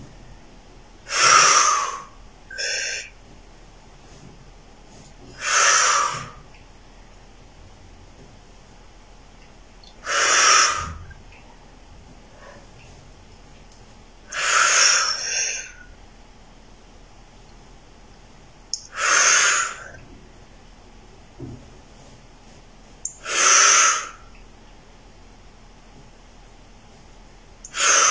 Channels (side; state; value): both; identical; correlation 1.00